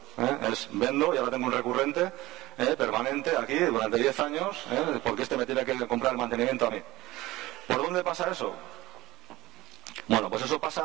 Es vendo y ahora tengo un recurrente permanente aquí durante 10 años, porque este me tiene que comprar el mantenimiento a mí. ¿Por dónde pasa eso? Bueno, pues eso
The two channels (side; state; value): left; quieter; 18.5 dB